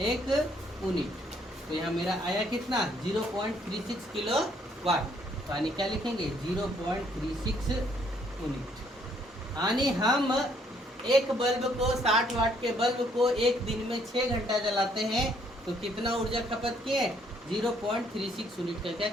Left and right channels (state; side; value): normal; both; correlation 0.67